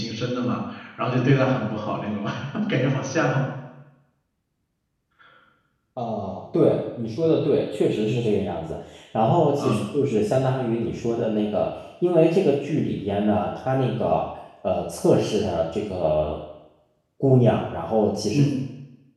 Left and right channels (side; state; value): both; identical; correlation 1.00